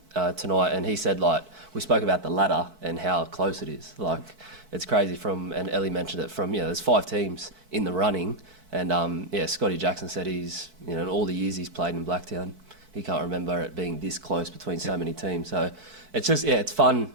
tonight, and he said we spoke about the ladder and how close it is. It's crazy and Ellie mentioned it there's 5 teams in the running, and Scotty Jackson said he's in all the years he's played in Blacktown, he can't remember it being this close between so many teams. So it's just it's fun.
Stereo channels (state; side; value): late; left; 4.6 ms